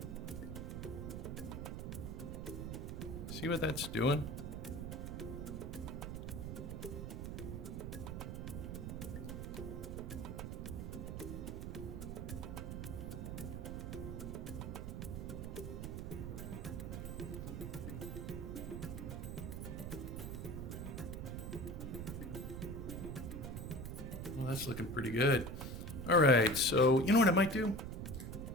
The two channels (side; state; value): right; noise; rumble, 5 dB below the sound